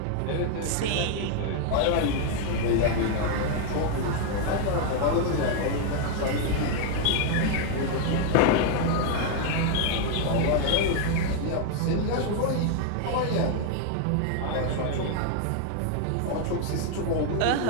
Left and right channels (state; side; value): different; both; correlation 0.00